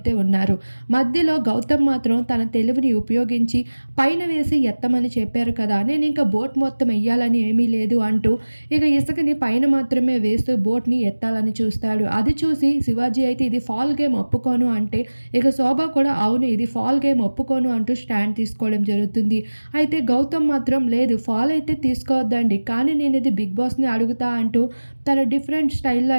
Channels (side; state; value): both; inverted; correlation -1.00